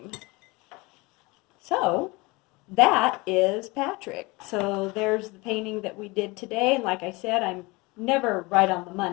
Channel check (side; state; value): right; quieter; 24.5 dB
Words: So that is Patrick. So there's the painting that we did today. And like I said, I'm never right on the